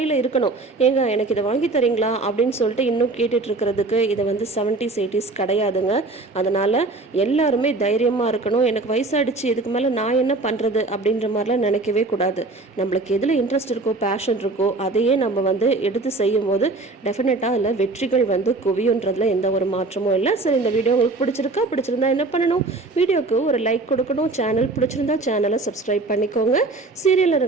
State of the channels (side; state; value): left; quieter; 3.3 dB